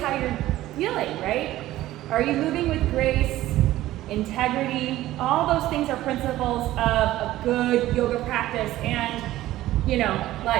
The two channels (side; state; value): left; quieter; 15.3 dB